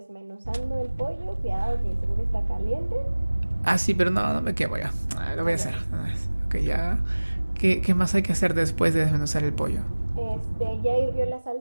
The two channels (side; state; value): both; inverted; correlation -1.00